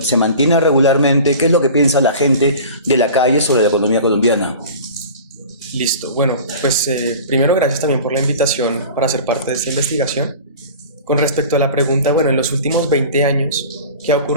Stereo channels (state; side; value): inverted; both; correlation -0.39